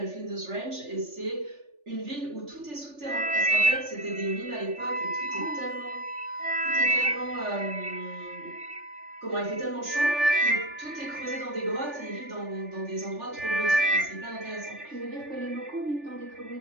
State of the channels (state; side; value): late; left; 3.4 ms